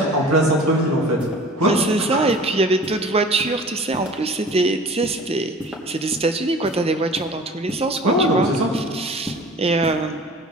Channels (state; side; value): normal; both; correlation 0.43